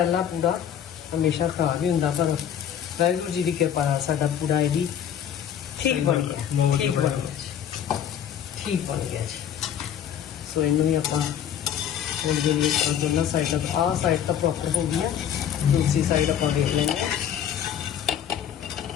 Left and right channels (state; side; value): quieter; right; 9.4 dB